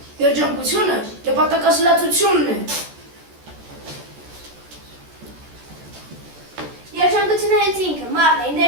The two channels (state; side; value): late; left; 14 ms